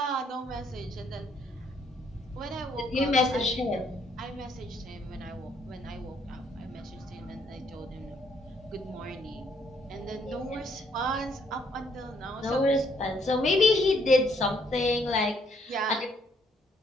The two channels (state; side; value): normal; both; correlation 0.69